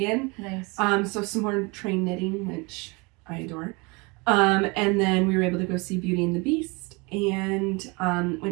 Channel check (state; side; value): quieter; left; 27.6 dB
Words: Nice. So some more train knitting, which I adore. And then we were able to go see Beauty and the Beast and